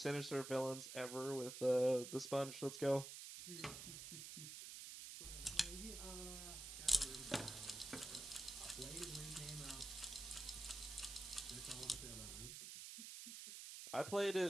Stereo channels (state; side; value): noise; right; hiss, 8 dB below the sound